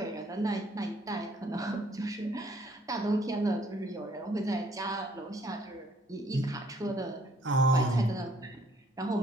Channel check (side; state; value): both; normal; correlation 0.64